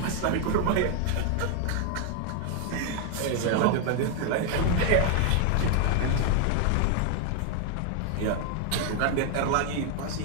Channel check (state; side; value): different; both; correlation 0.00